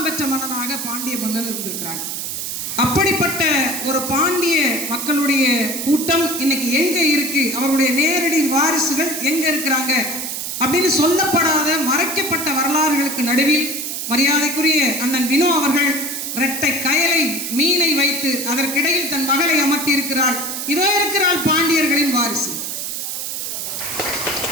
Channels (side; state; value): right; noise; hiss, 4 dB below the sound